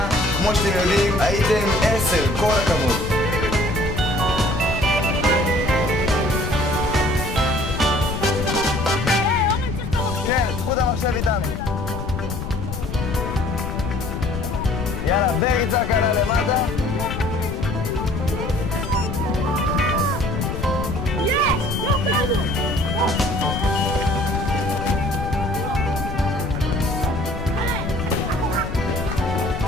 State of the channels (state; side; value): noise; left; rumble, 6 dB below the sound